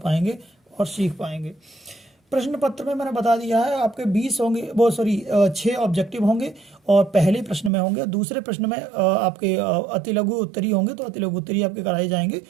और सीख पाएंगे। प्रश्न पत्र में मैंने बता दिया है आपके 20 होंगे, वो सॉरी 6 ऑब्जेक्टिव होंगे, और पहले प्रश्न में होंगे। दूसरे प्रश्न में आपके अति लघु उत्तरी होंगे, तो अति लघु उत्तरी आपके कराए जाएंगे।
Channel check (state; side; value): drops out; left; at 7.7 s